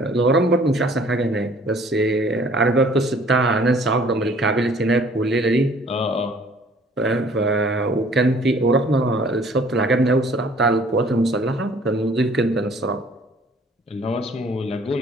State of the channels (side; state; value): both; normal; correlation 0.55